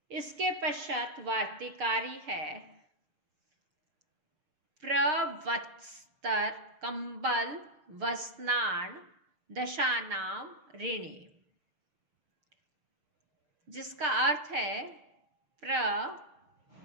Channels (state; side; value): late; left; 6.6 ms